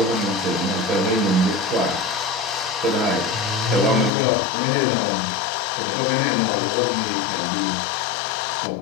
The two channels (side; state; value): right; drops out; at 4.1 s